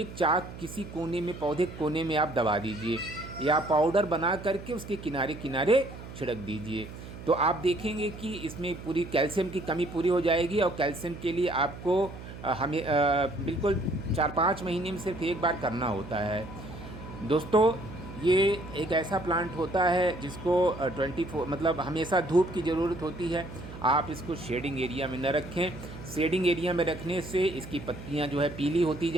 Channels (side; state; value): right; noise; hum, 13 dB below the sound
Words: चाक किसी कोने में, पौधे के कोने में आप दबा दीजिए या पाउडर बना करके उसके किनारे किनारे छिड़क दीजिए। तो आप देखेंगे कि इसमें पूरी कैल्शियम की कमी पूरी हो जाएगी। और कैल्शियम के लिए आपको हमें बिल्कुल 4-5 महीने में सिर्फ एक बार करना होता है दोस्तों। ये एक ऐसा प्लांट होता है जिसको 24 मतलब हमेशा धूप की ज़रूरत होती है। आप इसको शेडिंग एरिया में न रखें। शेडिंग एरिया में रखने से इसकी पत्तियां जो है पीली होती